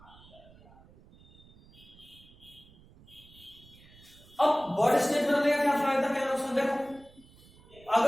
अब बर्ड स्टेज में रहने का क्या फायदा, क्या नुकसान? देखो,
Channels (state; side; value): noise; right; rumble, 24 dB below the sound